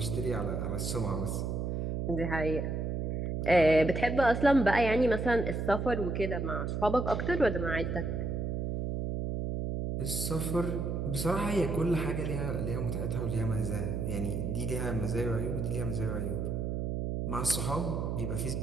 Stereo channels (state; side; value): noise; right; hum, 1 dB below the sound